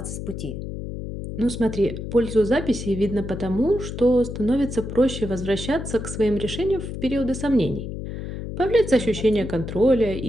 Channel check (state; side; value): noise; left; hum, 7 dB below the sound